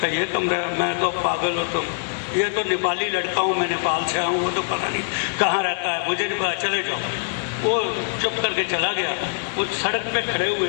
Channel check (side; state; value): right; silent; 63 dB below the other